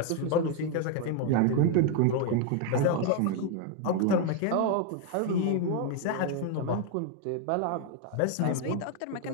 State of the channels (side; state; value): both; different; correlation 0.01